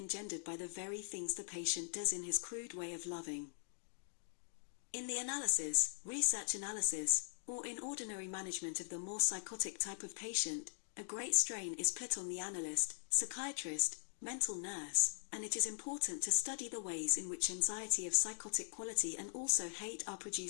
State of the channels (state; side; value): silent; right; digital silence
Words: by the very things the patient does in his crude way of loving. In the analysis, research analysis, or in ordinary management of the more psychotic type of patient, a great strain is put on the analyst, psychiatrist, mental nurse, and it is important to study the ways in which anxiety of psychotic quality and also hate are